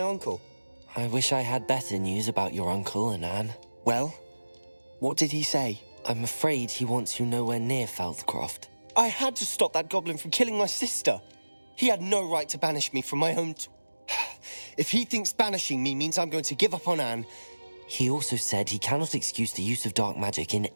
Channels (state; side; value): inverted; both; correlation -1.00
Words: I wish I had better news about your uncle and Anne. Well, what did he say? I'm afraid he wants you nowhere near Feldcroft. I had to stop that goblin from killing my sister. He had no right to banish me from my home. If he thinks banishing me means I'm going to give up on Anne... He also said he cannot excuse the use of dark magic in